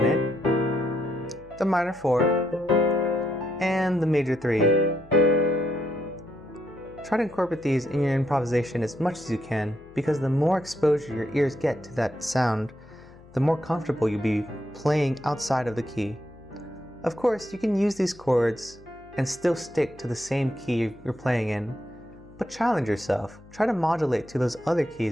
the minor 4, and the major 3. Try to incorporate these in your improvisation as much as you can, because the more exposure your ears get to that sound, the more comfortable you'll be playing outside of the key. Of course, you can use these chords and still stick to the same key you're playing in, but challenge yourself. Try to modulate to those other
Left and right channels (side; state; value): left; noise; hum, 24 dB below the sound